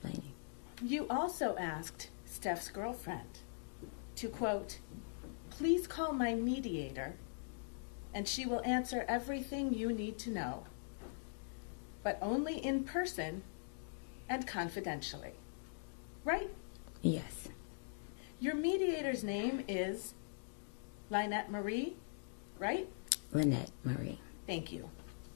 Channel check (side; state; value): right; silent; digital silence